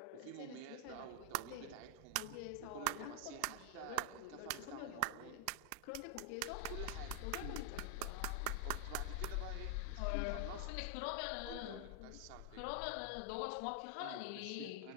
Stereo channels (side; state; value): both; different; correlation 0.00